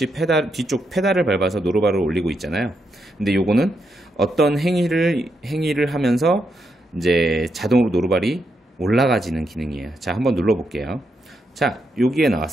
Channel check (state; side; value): normal; both; correlation 0.81